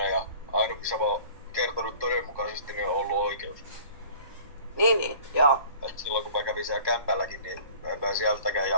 ja aina kun sä vaan kertonut todenmukaisesti, niin on ollut oikeus. Niin, joo. Et silloin kun mä kävin siellä kämpälläkin, niin en mä sieltäkään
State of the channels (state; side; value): inverted; both; correlation -0.48